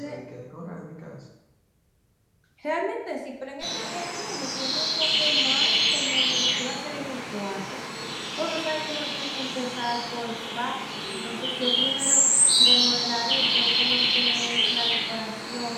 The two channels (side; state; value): both; identical; correlation 1.00